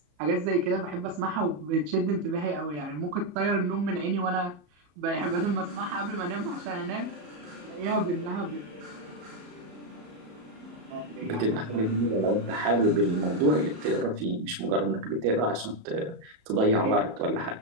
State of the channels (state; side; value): late; left; 34 ms